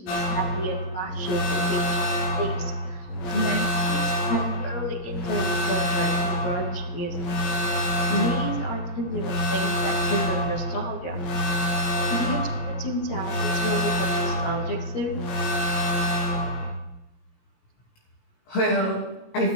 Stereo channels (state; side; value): late; right; 17 ms